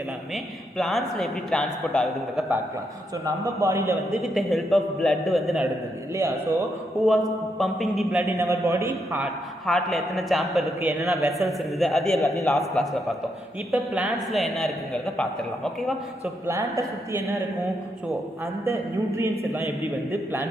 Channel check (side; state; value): both; normal; correlation 0.79